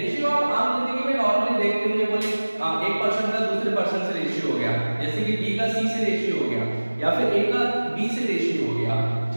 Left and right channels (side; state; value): both; inverted; correlation -1.00